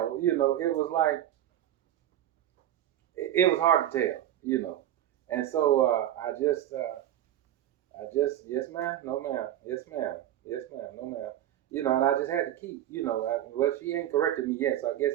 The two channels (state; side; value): quieter; left; 12.1 dB